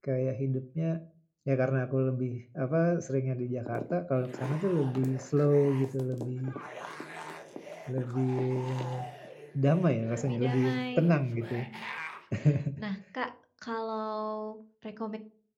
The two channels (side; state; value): both; identical; correlation 1.00